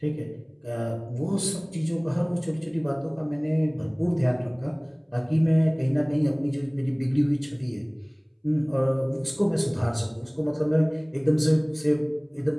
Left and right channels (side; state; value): both; identical; correlation 1.00